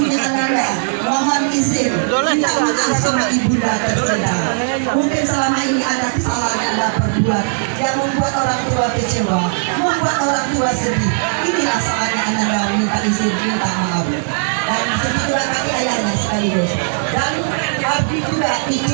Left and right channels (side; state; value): left; silent; 64 dB below the other